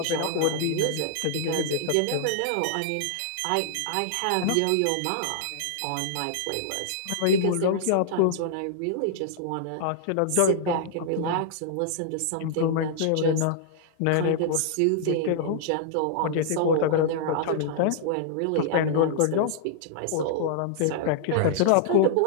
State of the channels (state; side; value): different; both; correlation -0.01